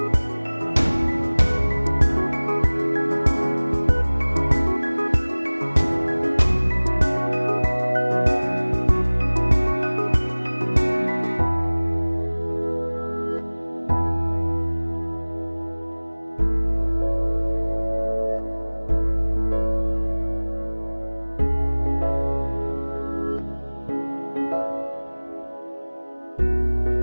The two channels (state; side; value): inverted; both; correlation -1.00